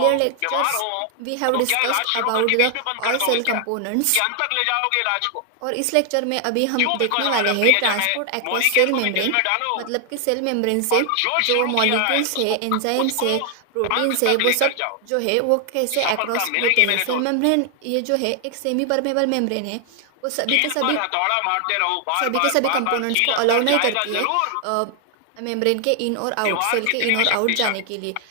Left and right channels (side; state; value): both; different; correlation 0.00